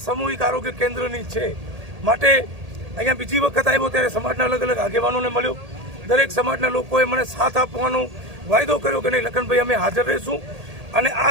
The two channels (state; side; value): late; left; 1.8 ms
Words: સામૂહિક આરોગ્ય કેન્દ્રની છે। માટે અહીંયા બીજી વખત આવ્યો ત્યારે સમાજના અલગ અલગ આગેવાનોને મળ્યો, દરેક સમાજના લોકોએ મને સાથ આપવાનો વાયદો કર્યો કે નહીં લખનભાઈ અમે હાજર રહીશું, અને